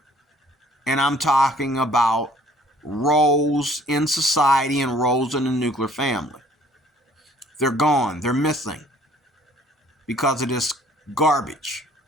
And I'm talking about roles in society and roles in the nuclear family. They're gone. They're missing because of this garbage.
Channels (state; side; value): normal; both; correlation 0.57